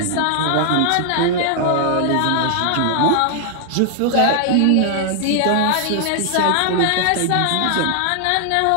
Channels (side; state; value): both; different; correlation 0.00